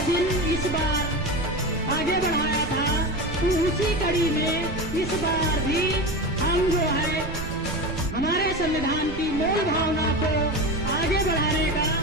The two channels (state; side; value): noise; right; rumble, 9 dB below the sound